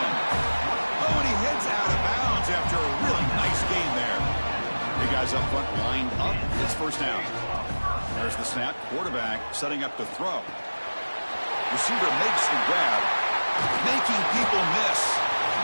Oh, and he heads out of bounds after a really nice gain there. Big guys up front lined up. It's first down. There's the snap. Quarterback setting up to throw. Receiver makes the grab, making people miss.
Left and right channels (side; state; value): both; inverted; correlation -1.00